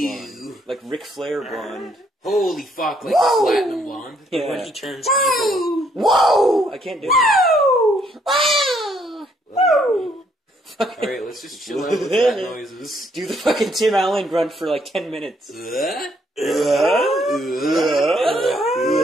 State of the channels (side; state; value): both; normal; correlation 0.69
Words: blonde. Like Ric Flair blonde. Holy fuck, like platinum blonde. Yeah. When he turns evil. Whoa! I can't do it. Whoa! Whoa! Alright, let's just chill out with that noises. Do the fucking Tim Allen grunt for like 10 minutes. People